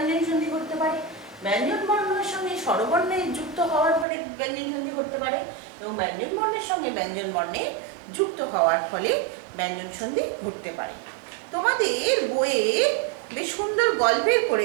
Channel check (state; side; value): drops out; left; at 4.0 s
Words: সন্ধি করতে পারে, ব্যঞ্জন বর্ণের সঙ্গে স্বরবর্ণে যুক্ত হওয়ার ফলে ব্যঞ্জন সন্ধি করতে পারে, এবং ব্যঞ্জন বর্ণের সঙ্গে ব্যঞ্জন বর্ণে যুক্ত হওয়ার ফলে ব্যঞ্জন সন্ধি ঘটতে পারে। তোমাদের বইয়ে বেশ সুন্দর গল্পের